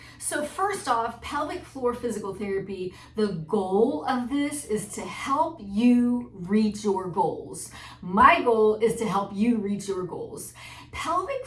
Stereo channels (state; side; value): identical; both; correlation 1.00